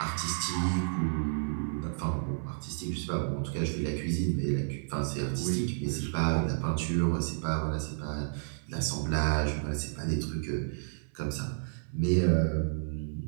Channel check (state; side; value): silent; left; 55 dB below the other